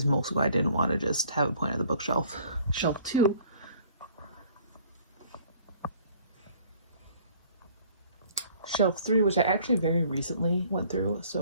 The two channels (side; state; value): both; inverted; correlation -0.55